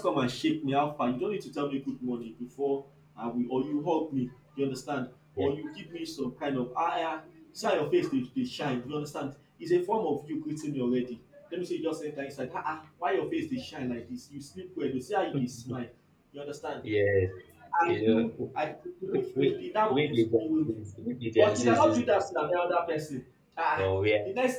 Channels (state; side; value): identical; both; correlation 1.00